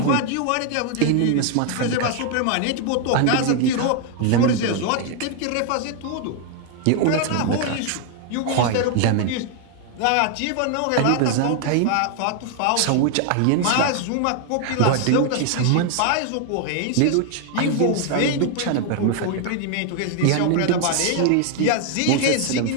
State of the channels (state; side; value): different; both; correlation 0.00